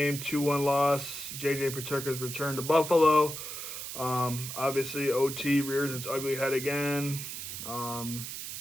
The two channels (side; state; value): right; noise; hiss, 7 dB below the sound